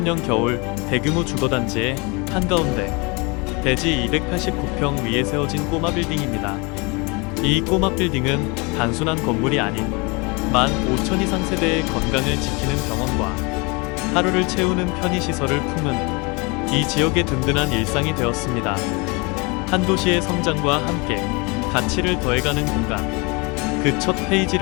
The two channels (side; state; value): right; quieter; 28.8 dB